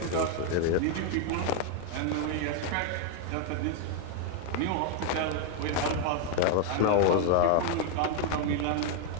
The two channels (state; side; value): different; both; correlation 0.00